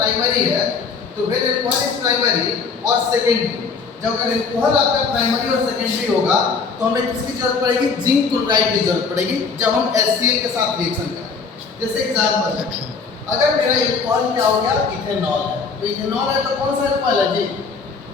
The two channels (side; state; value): right; quieter; 5.0 dB